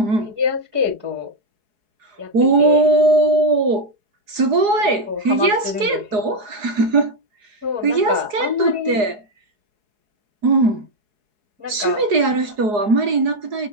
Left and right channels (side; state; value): left; late; 4.8 ms